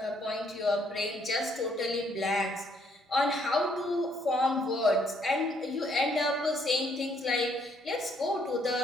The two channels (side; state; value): both; normal; correlation 0.69